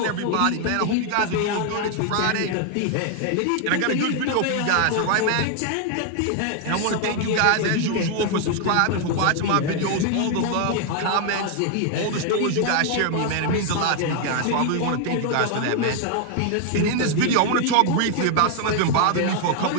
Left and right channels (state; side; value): different; both; correlation 0.00